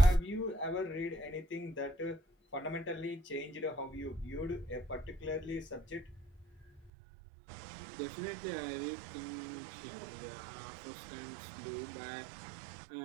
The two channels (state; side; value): drops out; left; at 6.9 s